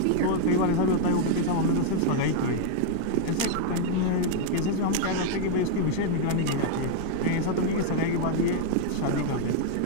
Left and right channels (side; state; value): both; different; correlation 0.00